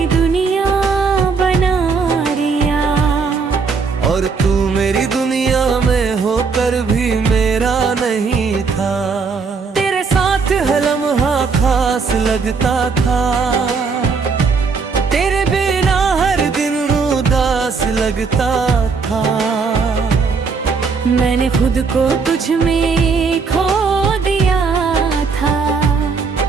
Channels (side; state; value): left; quieter; 5.0 dB